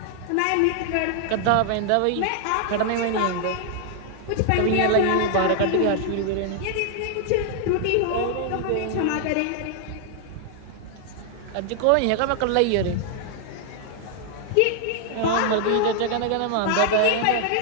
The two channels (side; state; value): both; different; correlation 0.00